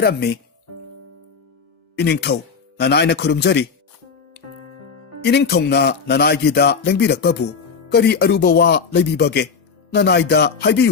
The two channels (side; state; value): right; quieter; 5.6 dB